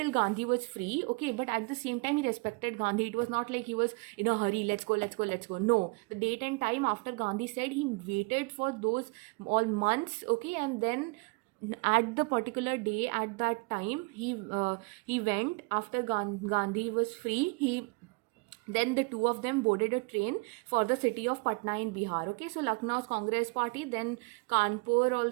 Gandhi was free, okay, but at the same time he respected Gandhi. It was not like he was in a hurry, let's go. No, the date and time after Gandhi said, he waited for those all months, okay, and then at the particular day, at that time, he went after Gandhi was free. Then the two of them boarded a train for the city of Patna in Bihar. Okay, so Lucknow's Congress Party, then Kanpur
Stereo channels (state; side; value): quieter; left; 29.5 dB